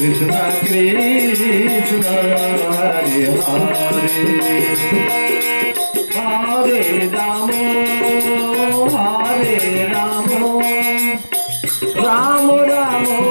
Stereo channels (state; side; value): inverted; both; correlation -1.00